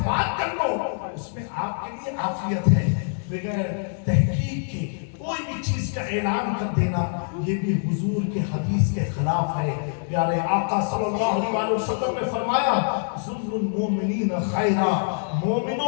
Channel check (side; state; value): right; silent; digital silence